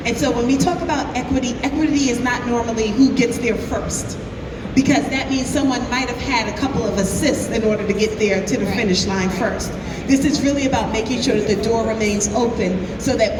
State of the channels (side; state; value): both; identical; correlation 1.00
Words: And so when we talk about equity, equity is not normally who gets there first, because that means someone might have had a couple of assists in order to get there to the finish line first. This is really about making sure that the door remains open so that